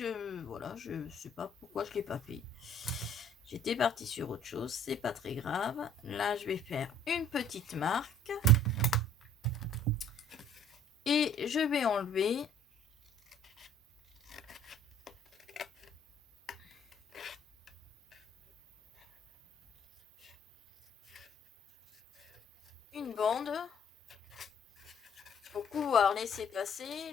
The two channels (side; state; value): both; normal; correlation 0.57